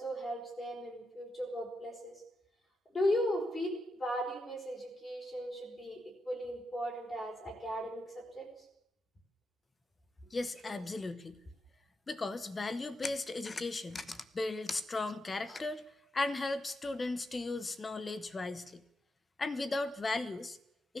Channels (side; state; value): both; normal; correlation 0.86